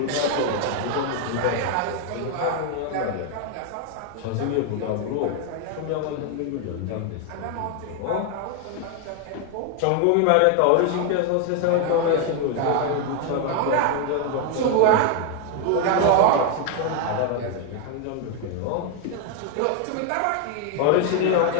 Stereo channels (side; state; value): both; different; correlation 0.00